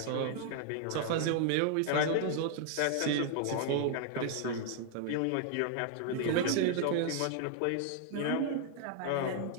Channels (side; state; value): both; different; correlation 0.00